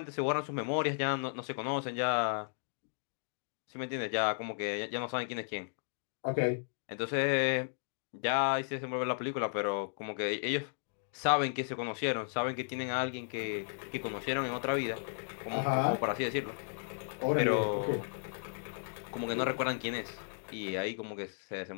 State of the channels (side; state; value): right; silent; digital silence